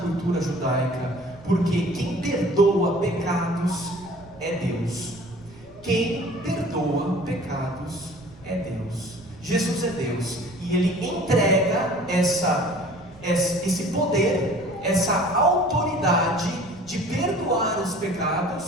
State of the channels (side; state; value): right; noise; rumble, 22 dB below the sound